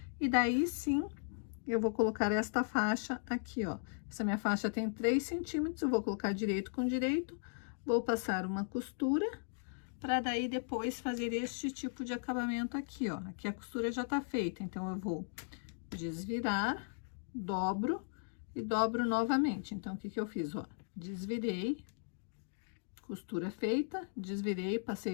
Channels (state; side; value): silent; right; digital silence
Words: e daí sim eu vou colocar esta faixa aqui, ó. Essa minha faixa tem 3 centímetros, eu vou colocar direito com direito, vou passar uma costura, para daí depois fazer este tipo de acabamento aqui, ó. Aqui a costura já tá feita, então eu vou desvirar, dobro e dobro novamente. Então, o que que eu fiz, ó? Desvirei, costura feita, desvirei,